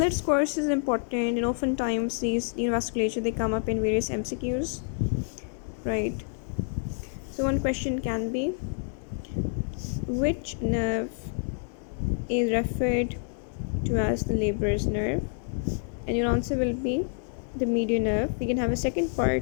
its course is important, and oftentimes these neovasculature they come up in various MCQs, right? So, one question can be, which nerve is referred to as the laborer's nerve? And your answer will be the median nerve. We can have a second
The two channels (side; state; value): right; silent; 59 dB below the other